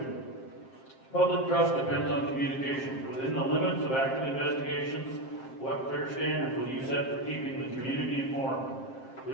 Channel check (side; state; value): right; late; 7.6 ms